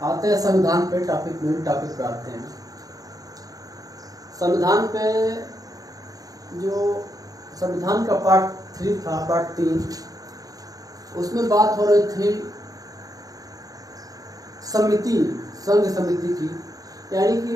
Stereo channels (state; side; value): late; left; 0.17 ms